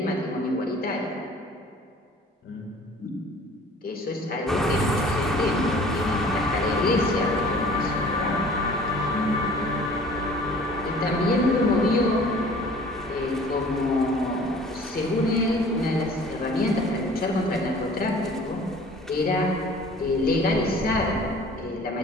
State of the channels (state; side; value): normal; both; correlation 0.49